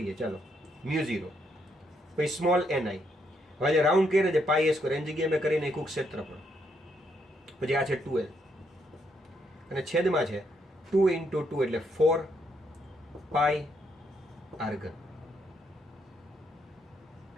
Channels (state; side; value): normal; both; correlation 0.75